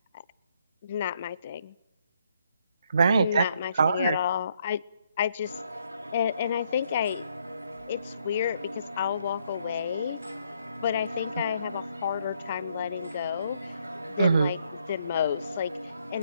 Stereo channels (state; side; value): inverted; both; correlation -0.72